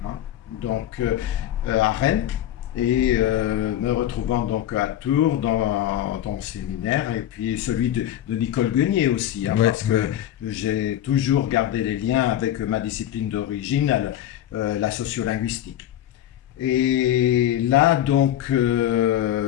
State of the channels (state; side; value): quieter; right; 11.9 dB